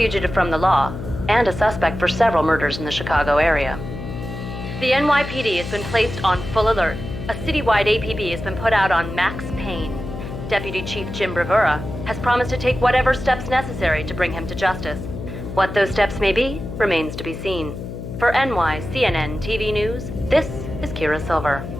from the law, and a suspect for several murders in the Chicago area. The NYPD has been placed on full alert. A citywide APB has been put out on Max Payne. Deputy Chief Jim Bravura has promised to take whatever steps necessary to bring him to justice. What those steps may be remains to be seen. For NYCNN TV News, this is Kira Silver.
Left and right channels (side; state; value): left; noise; hum, 8 dB below the sound